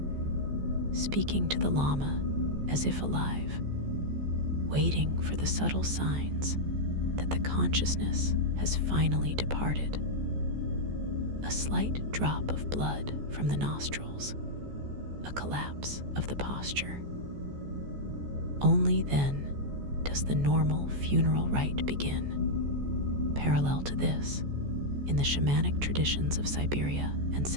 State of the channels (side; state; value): left; late; 14 ms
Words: speaking to the Lama as if alive, waiting for the subtle signs that the consciousness has finally departed. A slight drop of blood from the nostrils, a collapse of the posture. Only then does the normal funeral rite begin. Parallel to this, in the shamanic traditions of Siberia and